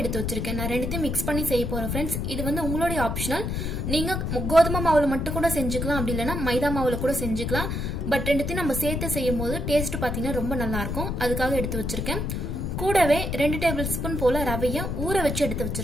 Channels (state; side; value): noise; left; rumble, 2 dB below the sound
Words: எடுத்து வச்சிருக்கேன். நான் ரெண்டுத்தையும் மிக்ஸ் பண்ணி செய்ய போறேன் फ्रेंड्स. இது வந்து உங்களுடைய ஆப்ஷனல். நீங்க கோதுமை மாவுல மட்டும் கூட செஞ்சுக்கலாம், அப்படி இல்லனா மைதா மாவுல கூட செஞ்சுக்கலாம். பட் ரெண்டுத்தையும் நம்ம சேர்த்து செய்யும்போது டேஸ்ட் பாத்தீங்கன்னா ரொம்ப நல்லா இருக்கும். அதுக்காக எடுத்து வச்சிருக்கேன். கூடவே 2 டேபிள் ஸ்பூன் போல ரவையை ஊற வச்சு எடுத்து